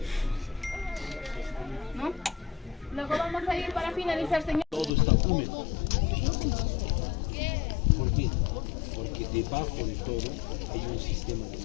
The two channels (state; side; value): drops out; right; at 4.9 s